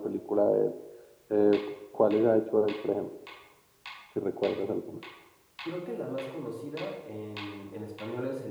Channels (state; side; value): identical; both; correlation 1.00